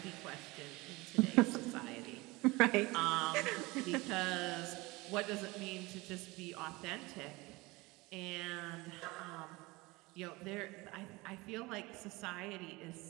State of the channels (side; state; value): left; quieter; 22.8 dB